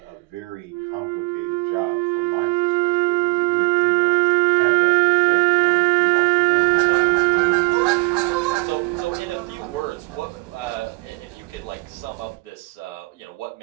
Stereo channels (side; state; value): left; quieter; 26.7 dB